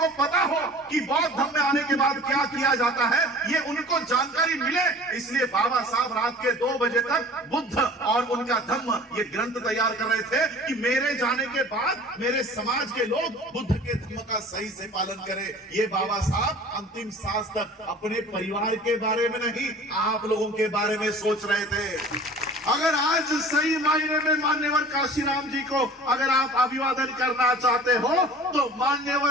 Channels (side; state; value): both; normal; correlation 0.44